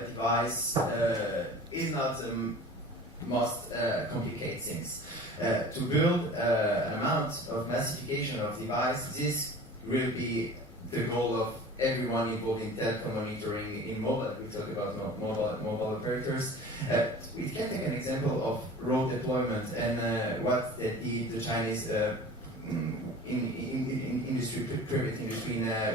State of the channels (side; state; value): both; normal; correlation 0.41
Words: device is not the most complicated things. To build an amount of massification of device, this will be the goal of everyone involved in telecom monitoring in mobile. We talk about mobile operators. We can take an example of road deployment and what the Chinese industry, private industry,